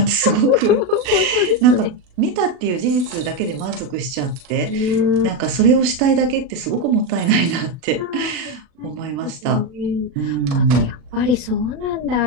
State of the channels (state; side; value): late; left; 36 ms